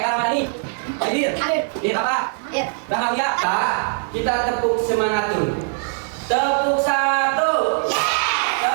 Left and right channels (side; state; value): left; silent; 58 dB below the other